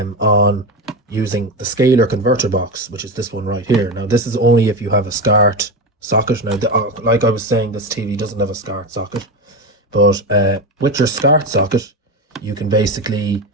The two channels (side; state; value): both; normal; correlation 0.18